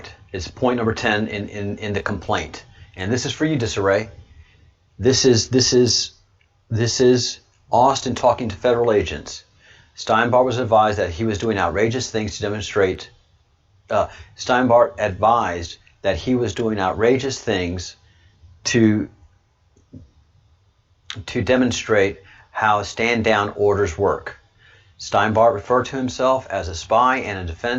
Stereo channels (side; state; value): both; identical; correlation 1.00